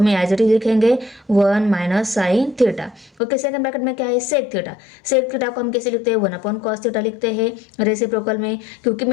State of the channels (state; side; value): drops out; right; at 3.1 s